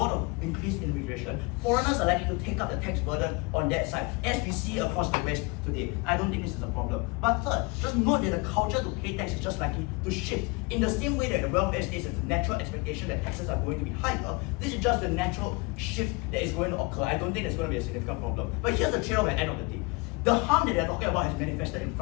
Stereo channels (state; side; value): quieter; right; 27.0 dB